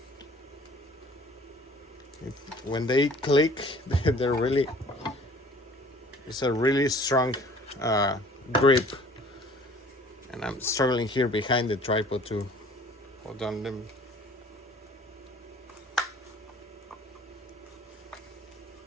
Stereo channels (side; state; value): both; normal; correlation 0.51